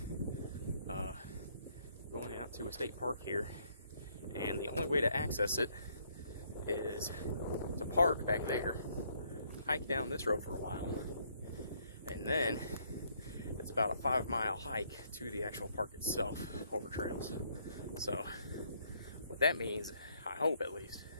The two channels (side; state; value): both; inverted; correlation -0.67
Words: going out to a state park here, and the only way to access it is to park back there, hike down this road for a while, and then it's about a 5-mile hike to the actual park itself over trails. So what that means, I hope at least,